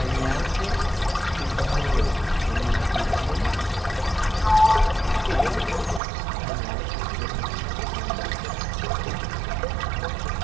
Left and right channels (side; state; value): left; drops out; at 6.0 s